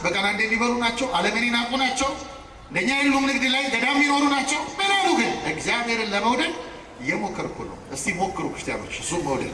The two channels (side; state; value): both; identical; correlation 1.00